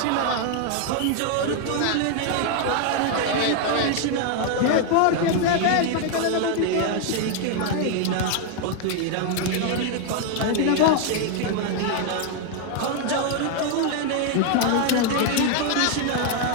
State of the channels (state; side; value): different; both; correlation 0.00